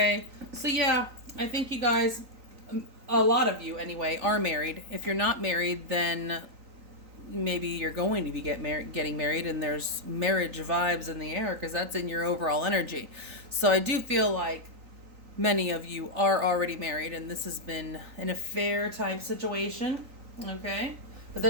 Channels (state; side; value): late; left; 3.9 ms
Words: So yeah, I think you guys, a lot of you anyway, are married. If you're not married, then maybe you're going to be getting married, and there's marriage vibes in the air because that's in your overall energy. So I do feel like many of you are already married, and this has been an affair type situation, okay? But